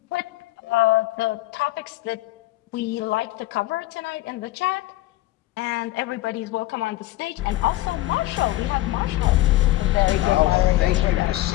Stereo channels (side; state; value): right; quieter; 16.9 dB